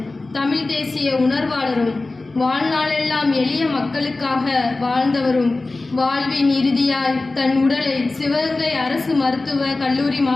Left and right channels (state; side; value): quieter; right; 3.3 dB